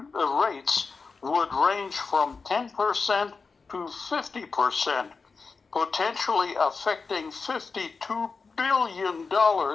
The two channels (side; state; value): right; quieter; 4.6 dB